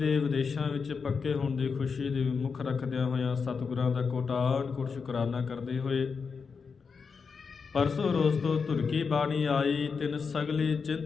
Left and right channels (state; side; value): quieter; right; 5.4 dB